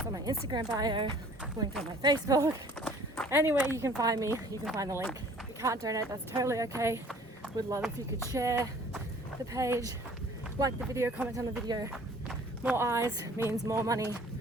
on my Instagram bio, linked on my Facebook. Anywhere you can find me, you can find the link. If you can't donate, that's totally okay. Would love if you could share the page, like the video, comment on the video. More eyes means more money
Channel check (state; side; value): normal; both; correlation 0.52